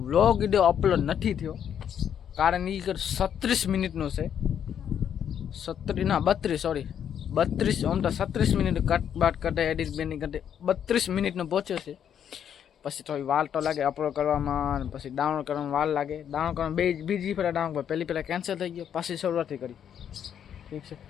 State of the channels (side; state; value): right; quieter; 8.9 dB